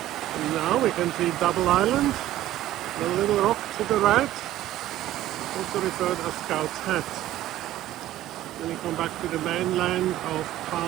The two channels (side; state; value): left; quieter; 14.1 dB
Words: And now we can see Double Island, the little rock to the right, also referred as Scout's Hat. Then we come back to the mainland of